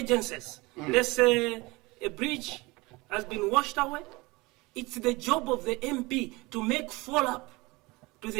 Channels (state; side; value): quieter; left; 23.4 dB